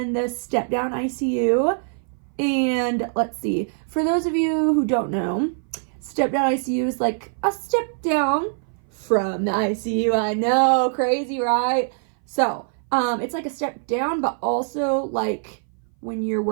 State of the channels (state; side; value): silent; left; 59 dB below the other